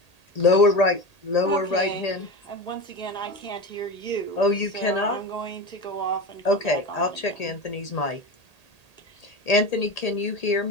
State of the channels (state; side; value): late; right; 1.8 ms